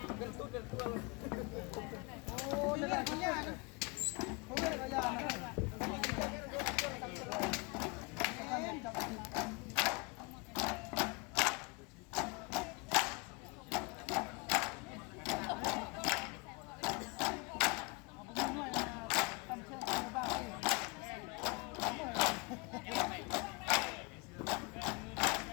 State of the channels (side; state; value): right; quieter; 30.0 dB